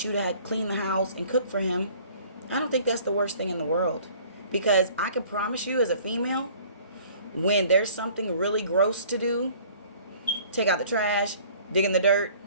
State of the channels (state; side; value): inverted; both; correlation -0.53